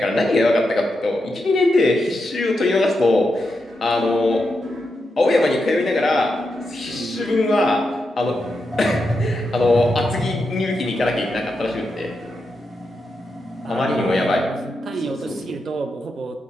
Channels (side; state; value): both; normal; correlation 0.86